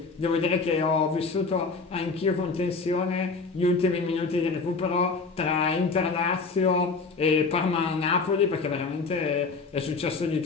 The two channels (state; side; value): quieter; right; 4.4 dB